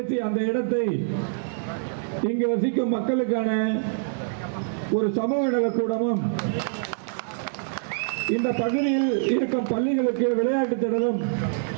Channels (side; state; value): left; silent; digital silence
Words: அந்த இடத்தை இங்கு வசிக்கும் மக்களுக்கான ஒரு சமூக நலக்கூடமும் இந்த பகுதியில் இருக்கும் பள்ளிகளுக்கு விளையாட்டு திடலும்